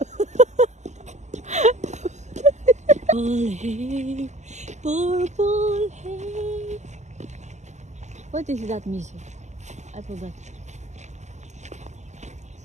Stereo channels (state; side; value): late; left; 0.34 ms